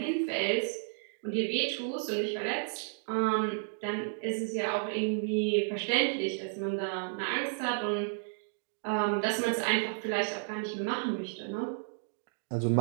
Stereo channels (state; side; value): silent; left; digital silence